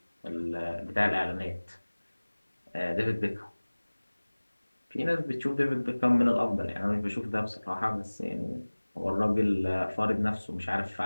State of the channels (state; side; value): inverted; both; correlation -1.00